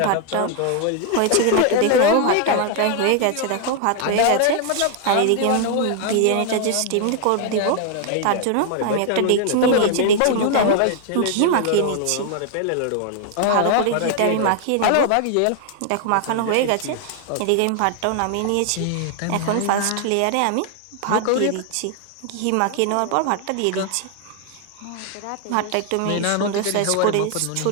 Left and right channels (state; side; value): different; both; correlation 0.00